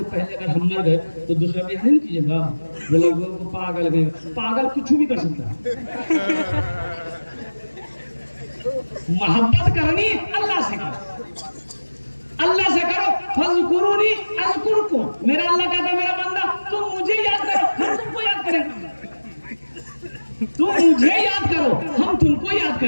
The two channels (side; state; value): both; inverted; correlation -1.00